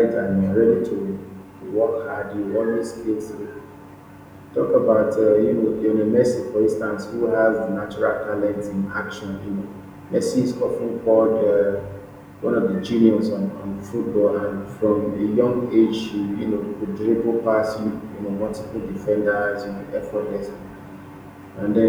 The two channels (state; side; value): identical; both; correlation 1.00